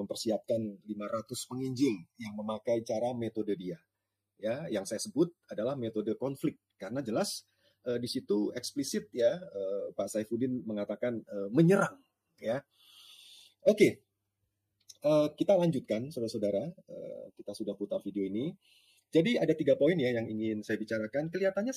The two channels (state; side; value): identical; both; correlation 1.00